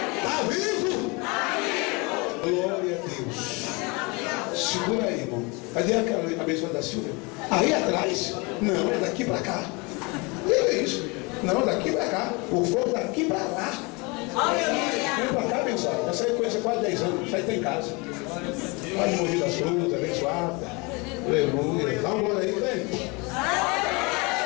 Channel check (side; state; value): right; quieter; 28.0 dB